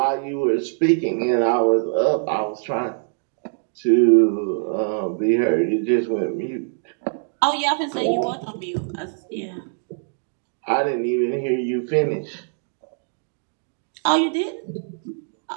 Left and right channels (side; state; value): left; silent; digital silence